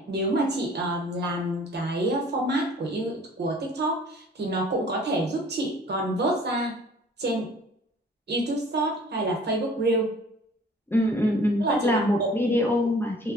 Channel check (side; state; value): both; normal; correlation 0.51